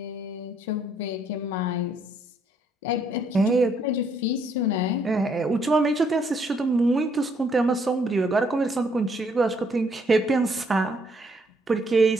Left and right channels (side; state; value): both; normal; correlation 0.69